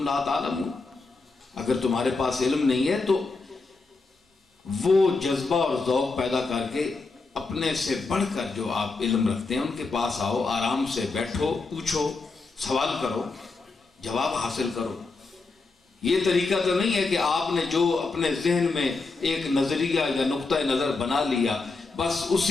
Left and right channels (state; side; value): quieter; right; 3.9 dB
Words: لَا تَعْلَمُونَ، اگر تمہارے پاس علم نہیں ہے تو وہ جذبہ اور ذوق پیدا کر کے اپنے سے بڑھ کر جو آپ علم رکھتے ہیں ان کے پاس آؤ، آرام سے بیٹھو، پوچھو، سوال کرو، جواب حاصل کرو۔ یہ طریقہ تو نہیں ہے کہ آپ نے جو اپنے ذہن میں ایک نظریہ یا نقطہ نظر بنا لیا، بس